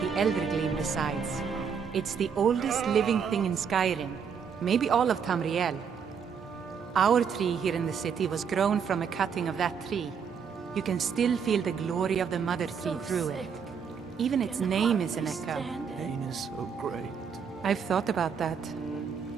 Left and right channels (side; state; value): left; quieter; 6.7 dB